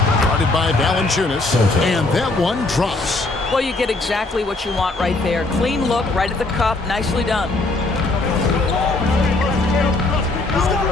By Valanciunas, and that one drops. Well, you get exactly what you want right there. Clean look, right at the cup, nicely done.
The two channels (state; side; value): quieter; right; 3.1 dB